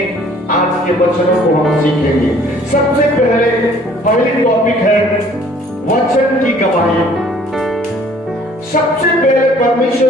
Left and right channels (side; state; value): both; normal; correlation 0.55